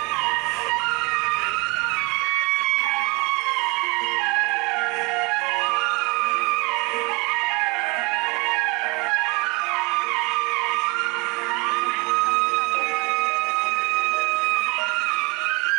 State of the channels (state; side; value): quieter; left; 27.0 dB